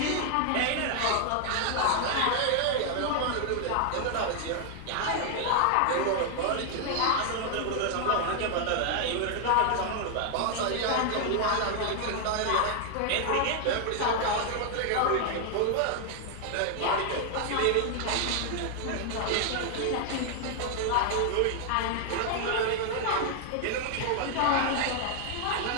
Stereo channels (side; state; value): both; different; correlation 0.00